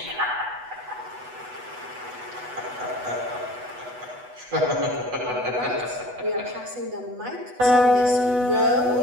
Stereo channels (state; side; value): late; left; 8.1 ms